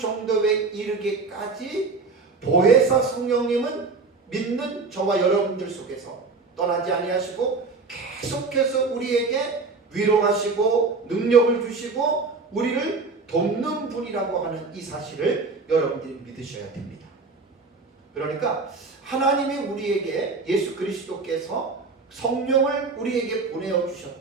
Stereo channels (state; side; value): quieter; left; 4.2 dB